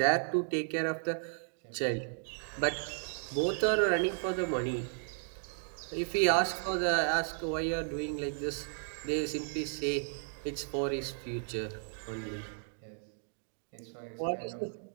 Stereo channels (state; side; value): silent; left; digital silence